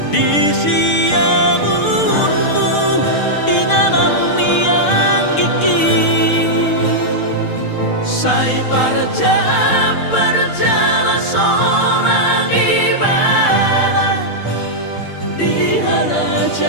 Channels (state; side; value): late; right; 6.6 ms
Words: di siamunmu inganan yang gigi. Sai berjalan seorang ibadah di